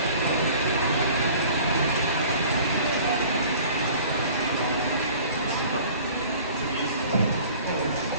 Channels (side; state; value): both; inverted; correlation -0.47